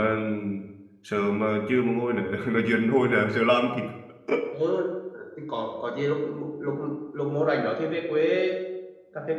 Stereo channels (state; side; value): identical; both; correlation 1.00